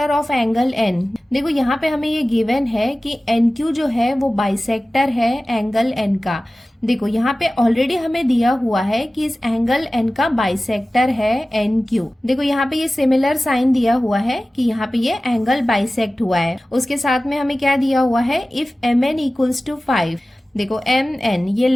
of angle N. देखो यहाँ पे हमें ये गिवन है कि एन क्यू जो है वो बाइसेक्टर है एंगल एन का। देखो यहाँ पे ऑलरेडी हमें दिया हुआ है कि इस एंगल एन का बाइसेक्टर है एन क्यू। देखो यहाँ पे ये सिमिलर साइन दिया हुआ है कि यहाँ पे ये एंगल बाइसेक्ट हुआ है। उसके साथ में हमें क्या दिया हुआ है, if M N equals to 5। देखो एम एन ये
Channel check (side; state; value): both; normal; correlation 0.96